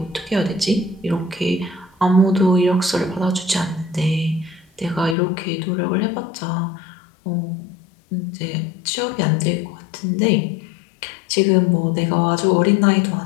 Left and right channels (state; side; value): drops out; right; at 5.2 s